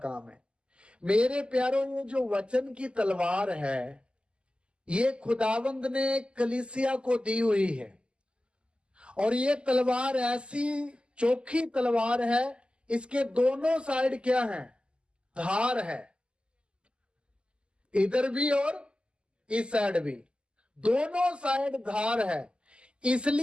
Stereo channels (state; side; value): late; left; 0.052 ms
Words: है। मेरे प्यारों, ये जो वचन की तलवार है, ये खुदावंद ने कलीसिया को दी हुई है। और ये तलवार ऐसी चोखी तलवार है, इसके दोनों साइड क्या है, धार है, इधर भी और इस साइड भी, दोनों साइड धार है।